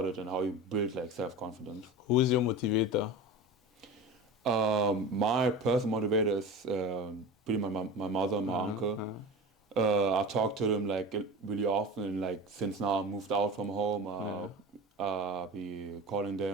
and how you build like self-confidence. Who's your motivator? My personal motivator is pretty my mother and my uncle. I talk to them like really often, and like since now I moved out from home, be calling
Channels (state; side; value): normal; both; correlation 0.31